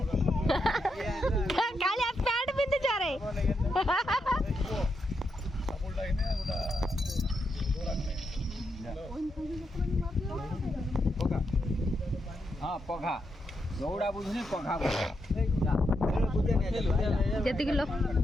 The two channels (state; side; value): normal; both; correlation 0.83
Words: कालिया पैंट पिंध जा रे हाँ पघा दौड़ा बुझने पघा जति किलो